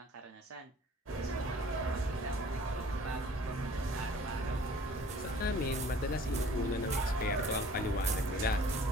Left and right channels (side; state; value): both; normal; correlation 0.51